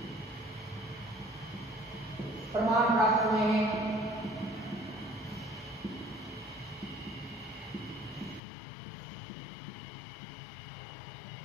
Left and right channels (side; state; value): right; drops out; at 8.4 s